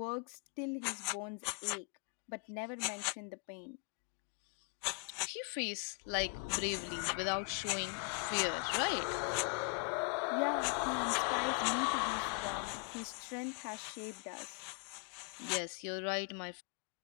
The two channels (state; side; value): quieter; right; 36.7 dB